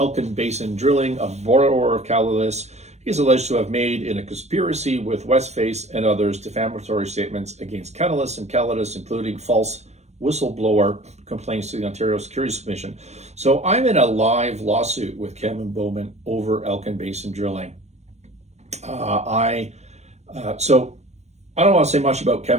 Basin Drilling, a borrower of Calidus. He is alleged to have made, in a conspiracy with Westface and others, defamatory statements against Calidus and Calidus, including false whistleblower complaints to the Ontario Securities Commission. So I'm in a live lawsuit with Kevin Bowman over Elkin Basin Drilling. So I don't want to say much about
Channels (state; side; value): late; left; 0.32 ms